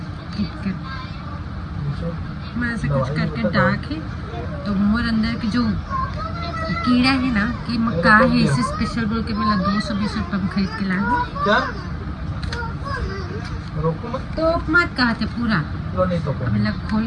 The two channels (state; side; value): identical; both; correlation 1.00